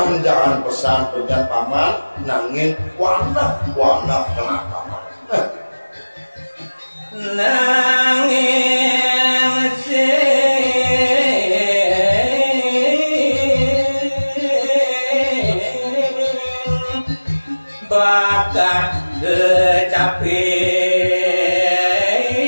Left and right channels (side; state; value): both; inverted; correlation -1.00